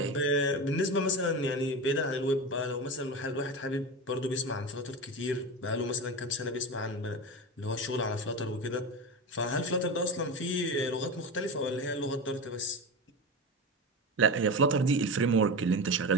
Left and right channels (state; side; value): normal; both; correlation 0.24